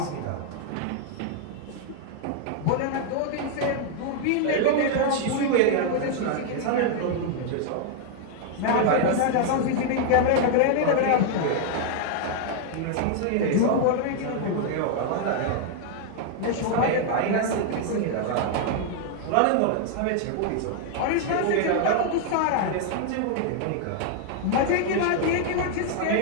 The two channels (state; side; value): different; both; correlation 0.00